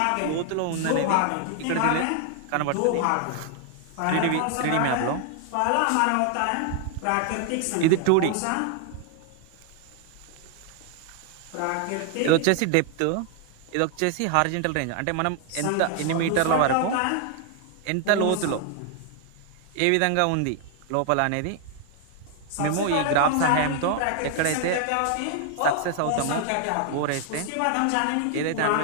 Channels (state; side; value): different; both; correlation 0.00